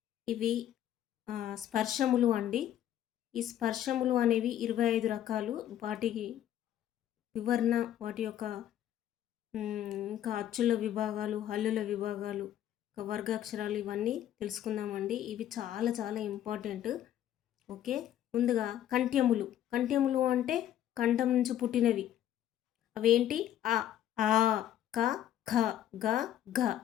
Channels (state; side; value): quieter; right; 11.4 dB